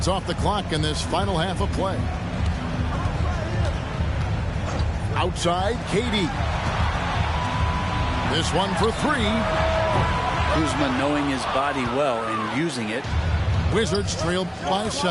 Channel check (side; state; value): both; identical; correlation 1.00